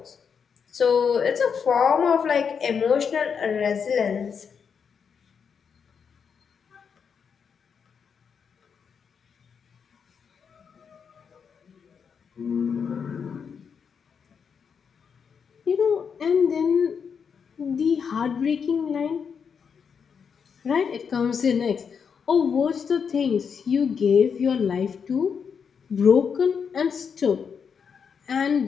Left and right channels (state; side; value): quieter; right; 6.5 dB